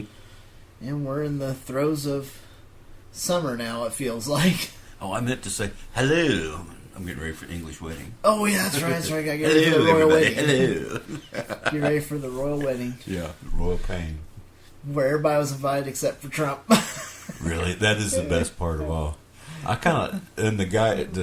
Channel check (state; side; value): identical; both; correlation 1.00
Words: And we're in the throes of summer now, it feels like. Oh, I meant to say hello. I'm getting ready for English wedding. Oh, yeah, that's right. Gotta get hello, ready for the royal everybody. wedding. Hello. Get ready for the royal wedding. Yeah, royal pain. Where everybody was invited except for Trump. Really? That is the best part of all. I kind of, and